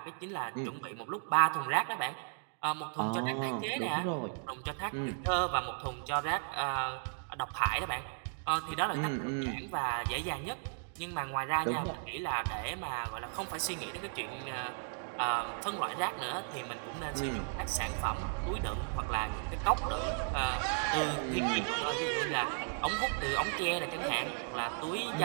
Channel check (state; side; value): silent; left; 54 dB below the other